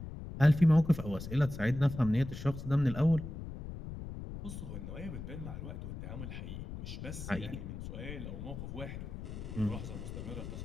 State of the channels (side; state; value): left; noise; rumble, 8 dB below the sound